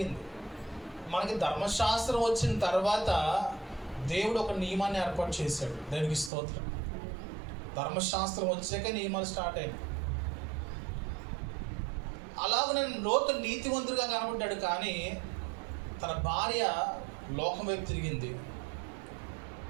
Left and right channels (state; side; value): drops out; left; at 6.3 s